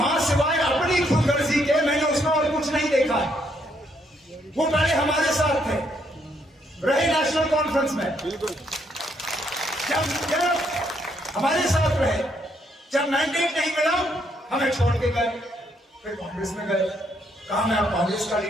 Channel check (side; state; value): both; normal; correlation 0.73